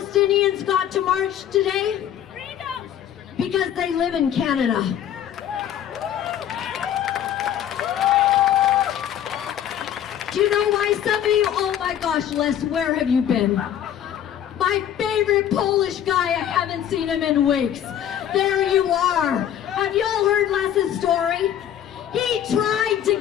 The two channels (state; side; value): quieter; right; 10.3 dB